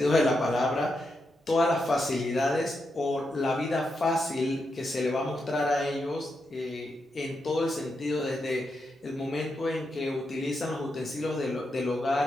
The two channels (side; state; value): both; normal; correlation 0.84